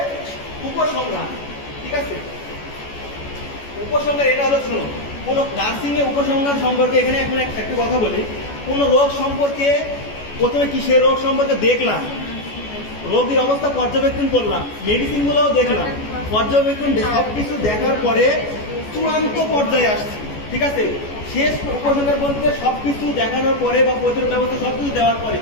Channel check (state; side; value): late; right; 14 ms